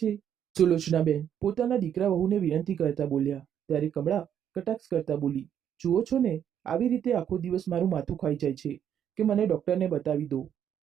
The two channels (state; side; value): quieter; left; 9.2 dB